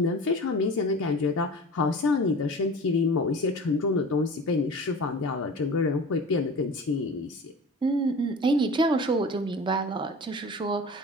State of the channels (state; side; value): normal; both; correlation 0.37